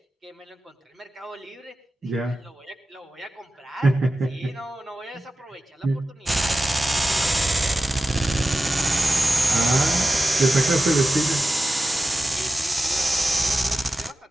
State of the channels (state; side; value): normal; both; correlation 0.93